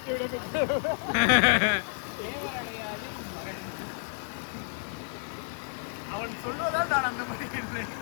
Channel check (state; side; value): silent; right; digital silence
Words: அவன் சொல்வதால் நான் அந்த மாதிரி